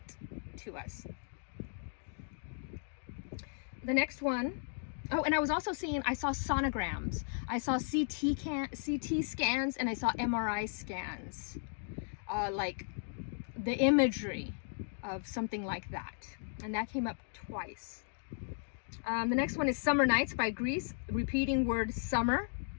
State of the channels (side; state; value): right; silent; digital silence